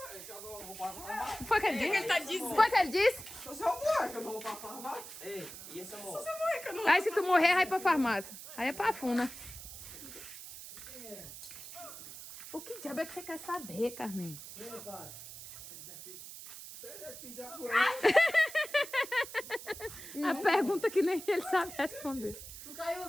Foi o que ele disse? Ele tá dizendo. Foi o que ele disse? Se eu morrer, que eu não vou pra farmácia. Ei, e esse amor? Aí se tu morrer, vai pra farmácia. Aí é pra funa. O que diabo é que você quer saber, Carmen? A pergunta que nem ele sabe responder. Tu caiu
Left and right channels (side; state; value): right; noise; hiss, 12 dB below the sound